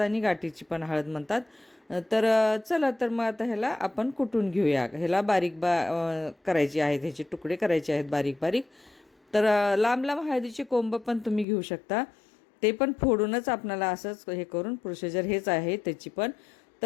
गाठीची पण हळद म्हणतात. तर चला तर मग आता ह्याला आपण कुटून घेऊया. ह्याला करायची आहेत, ह्याचे तुकडे करायचे आहेत बारीक बारीक. तर लांब लांब हळदीचे कोंब पण तुम्ही घेऊ शकता. ते पण फोडूनच आपणाला असंच हे करून प्रोसिजर हेच आहे त्याची पण.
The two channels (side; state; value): right; drops out; at 11.5 s